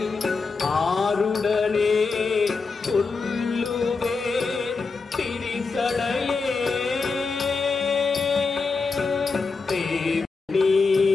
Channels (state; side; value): quieter; right; 4.4 dB